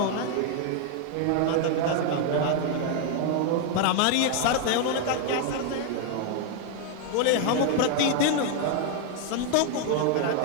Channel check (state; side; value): different; both; correlation 0.00